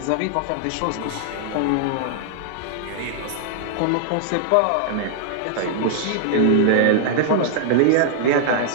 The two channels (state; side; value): different; both; correlation -0.01